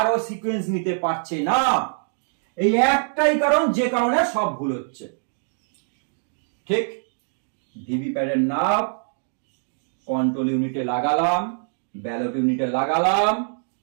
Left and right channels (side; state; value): left; silent; 63 dB below the other